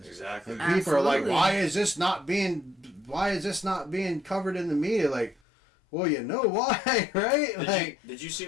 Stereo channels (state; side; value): drops out; right; at 5.4 s